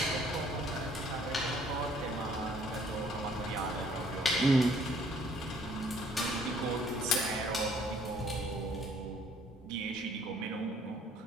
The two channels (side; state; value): both; normal; correlation 0.60